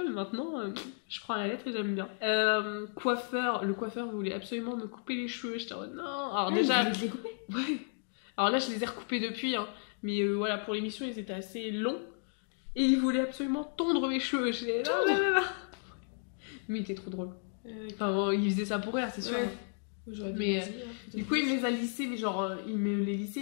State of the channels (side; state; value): right; silent; 56 dB below the other